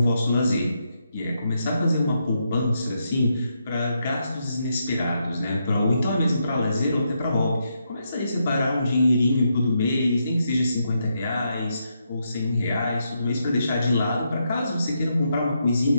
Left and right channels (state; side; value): inverted; both; correlation -0.81